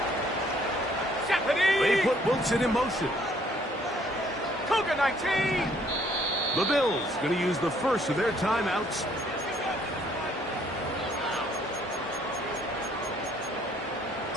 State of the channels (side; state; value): both; normal; correlation 0.63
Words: They put Wilson in motion. Cougar 19. The Bills going to use the first of their timeouts.